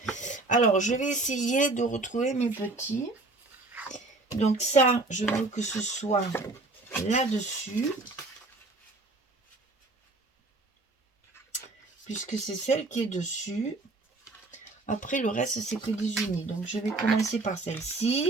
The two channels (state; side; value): quieter; left; 3.2 dB